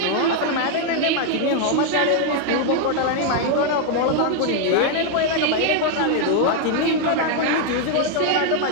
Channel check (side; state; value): both; different; correlation 0.00